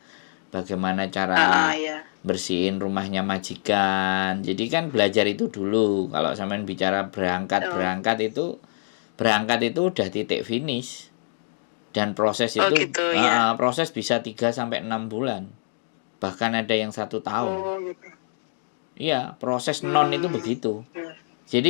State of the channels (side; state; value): right; silent; digital silence